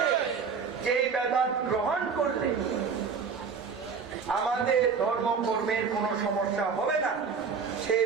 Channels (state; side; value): quieter; left; 5.7 dB